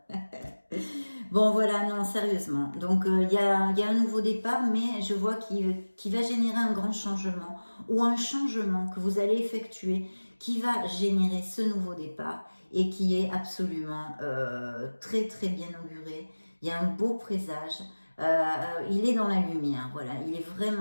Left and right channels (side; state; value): both; inverted; correlation -1.00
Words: Bon, voilà, non, sérieusement. Donc, il y a un nouveau départ, mais je vois qu'il va générer un grand changement, ou un changement que vous allez effectuer, qui va générer ce nouveau départ, et qui est absolument très, très bien auguré. Il y a un beau présage. il est dans la lumière, voilà, il est